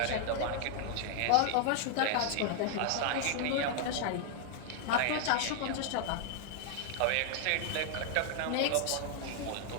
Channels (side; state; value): both; different; correlation 0.00